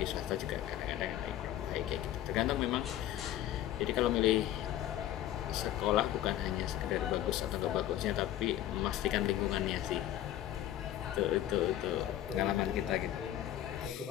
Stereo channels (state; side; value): quieter; right; 12.7 dB